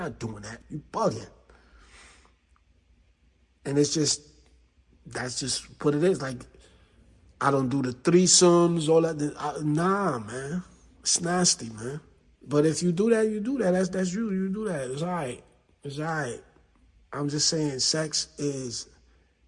doing that. You bugging. And that's just what it is. Like, I don't do the threesomes, all that. Nah, man. It's nasty, man. But if you do that, you do that. That's you. You do that. It's all right. It's all right. I'm just saying, sex is.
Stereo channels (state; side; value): identical; both; correlation 1.00